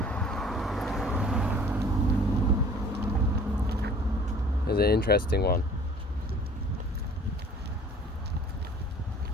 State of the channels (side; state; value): both; normal; correlation 0.50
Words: There's an interesting one.